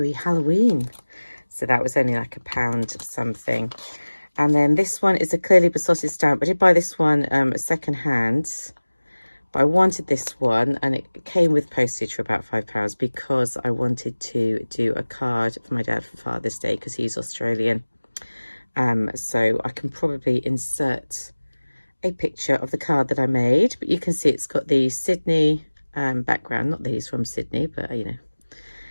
Halloween. So that was only like £1 something. And then this one is a clearly besotted stamp. I did buy this one second hand, but I wanted this one, and it came with postage for about £5 because I wanted to do a card for my dad for Father's Day because he's Australian. So I can probably insert a picture of the card that I made, but you can see it's got the Sydney background. Not that he's from Sydney, but you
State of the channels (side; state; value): both; inverted; correlation -1.00